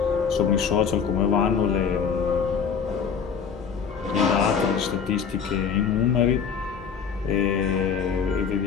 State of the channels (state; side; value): quieter; right; 6.6 dB